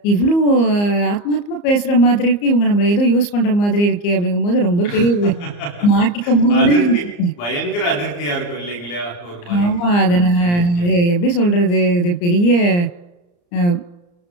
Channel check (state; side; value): late; right; 34 ms